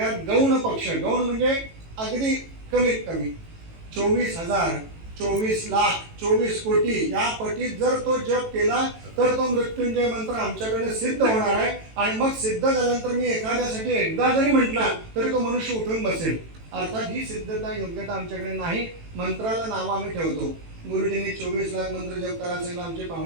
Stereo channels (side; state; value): left; late; 18 ms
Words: गौण पक्ष, गौण म्हणजे अगदी कमीत कमी 24,000, 24 लाख, 24 कोटी या पटीत जर तो जप केला तर तो मृत्युंजय मंत्र आमच्याकडे सिद्ध होणार आहे. आणि मग सिद्ध झाल्यानंतर मी एखाद्यासाठी एकदा जरी म्हटला तरी तो मनुष्य उठून बसेल. अर्थात ही सिद्धता योग्यता आमच्याकडे नाही. मंत्राला नाव आम्ही ठेवतो. गुरुजींनी 24 लाख मंत्र जप करायला सांगितलं, आमचे